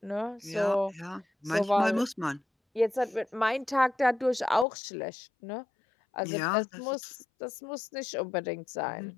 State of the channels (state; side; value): drops out; right; at 4.7 s